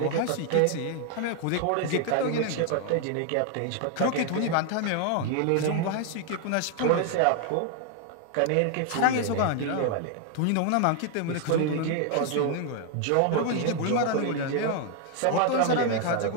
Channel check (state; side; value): different; both; correlation 0.00